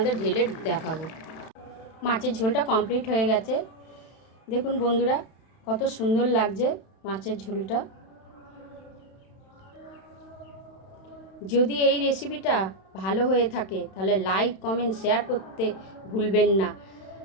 ঢেলে দেখাবো। মাছের ঝোলটা কমপ্লিট হয়ে গেছে। দেখুন বন্ধুরা, কত সুন্দর লাগছে মাছের ঝোলটা। যদি এই রেসিপিটা ভালো হয়ে থাকে তাহলে লাইক, কমেন্ট, শেয়ার করতে ভুলবেন না।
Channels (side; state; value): right; late; 31 ms